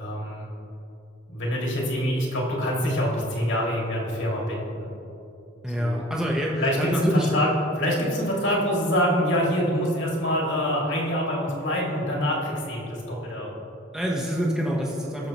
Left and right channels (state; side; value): normal; both; correlation 0.45